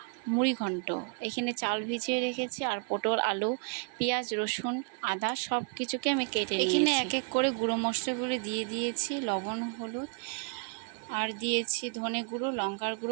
মুড়িঘণ্ট। এখানে চাল ভিজিয়ে রেখেছি আর পটল, আলু, পেঁয়াজ, রসুন, আদা সব কিছুকে আমি কেটে নিয়েছি। এখানে এক এক করে গুঁড়ো মশলাগুলো দিয়ে দিয়েছি, লবণ, হলুদ, আর দিয়েছি ধনে গুঁড়ো, লঙ্কার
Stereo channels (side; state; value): left; quieter; 39.7 dB